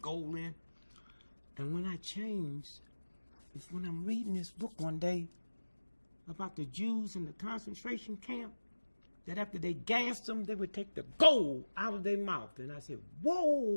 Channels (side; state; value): both; inverted; correlation -1.00